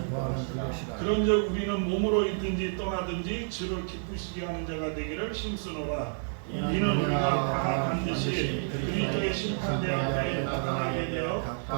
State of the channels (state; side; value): silent; left; 58 dB below the other